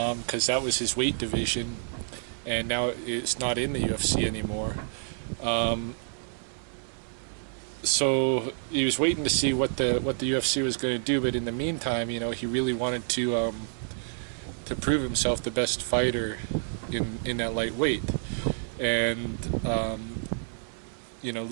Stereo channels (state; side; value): silent; left; 59 dB below the other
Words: that was his weight division, and now it's not in the UFC anymore. So he was waiting to see what the UFC was going to do, but in the meantime, he really wanted to prove himself the best fighter in that lightweight. And